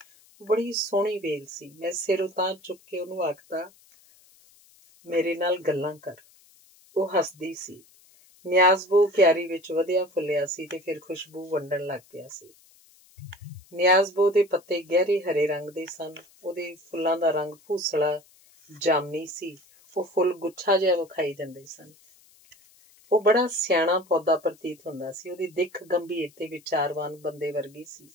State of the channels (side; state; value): left; noise; hiss, 28 dB below the sound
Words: ਉਹ ਬੜੀ ਸੋਹਣੀ ਵੇਲ ਸੀ। ਮੈਂ ਸਿਰ ਉਤਾਂਹ ਚੁੱਕ ਕੇ ਉਹਨੂੰ ਆਖਦਾ, ਮੇਰੇ ਨਾਲ ਗੱਲਾਂ ਕਰ। ਉਹ ਹੱਸਦੀ ਸੀ। ਨਿਆਜ਼ਬੋ ਕਿਆਰੀ ਵਿੱਚ ਵਧਿਆ ਫੁੱਲਿਆ ਸੀ ਤੇ ਫਿਰ ਖੁਸ਼ਬੂ ਵੰਡਣ ਲੱਗ ਪਿਆ ਸੀ। ਨਿਆਜ਼ਬੋ ਦੇ ਪੱਤੇ ਗਹਿਰੇ ਹਰੇ ਰੰਗ ਦੇ ਸਨ। ਉਹਦੇ ਫੁੱਲਾਂ ਦਾ ਰੰਗ ਭੂਸਲਾ ਜਾਮਨੀ ਸੀ। ਉਹ ਫੁੱਲ ਗੁੱਛਾ ਜਿਹਾ ਵਿਖਾਈ ਦਿੰਦੇ ਸਨ। ਉਹ ਬੜਾ ਸਿਆਣਾ ਪੌਦਾ ਪ੍ਰਤੀਤ ਹੁੰਦਾ ਸੀ। ਉਹਦੀ ਦਿੱਖ ਗੰਭੀਰ ਤੇ ਵਿਚਾਰਵਾਨ ਬੰਦੇ ਵਰਗੀ ਸੀ।